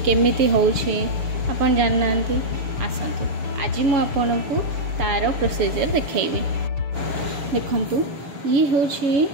केमिति होउछि आपण जानि नाहंती। आसंतु आज मु आपण को तार प्रोसीजर देखैबी। देखंतु ये हूँ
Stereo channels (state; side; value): late; left; 6.9 ms